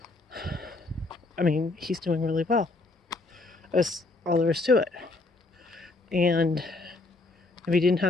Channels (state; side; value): quieter; right; 3.2 dB